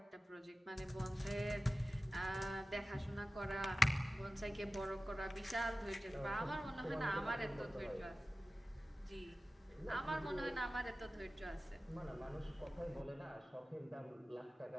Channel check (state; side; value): normal; both; correlation 0.95